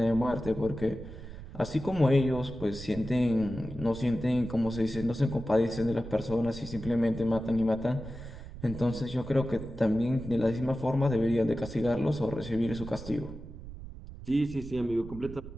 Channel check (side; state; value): right; noise; rumble, 13 dB below the sound